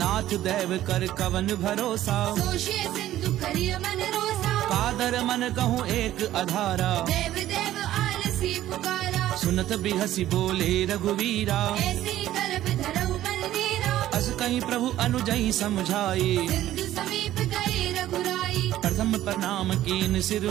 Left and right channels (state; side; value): quieter; left; 13.5 dB